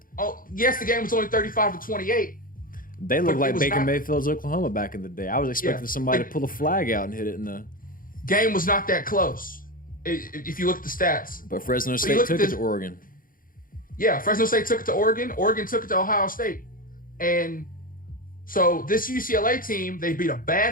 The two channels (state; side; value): late; right; 0.40 ms